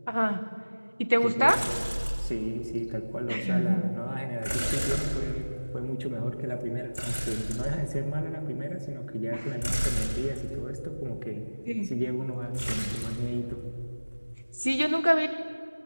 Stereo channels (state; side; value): inverted; both; correlation -1.00